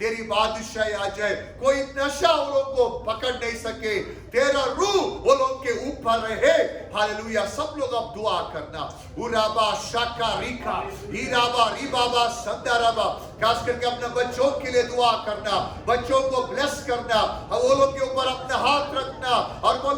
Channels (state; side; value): identical; both; correlation 1.00